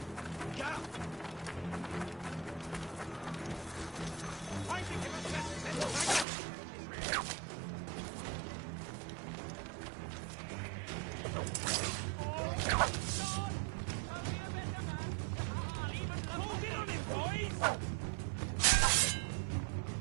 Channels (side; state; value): left; drops out; at 6.2 s